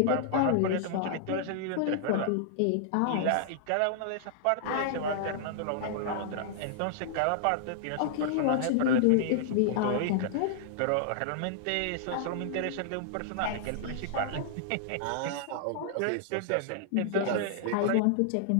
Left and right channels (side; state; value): both; different; correlation -0.01